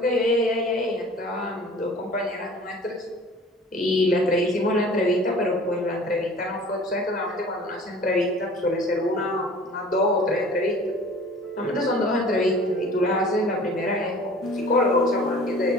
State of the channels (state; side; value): normal; both; correlation 0.45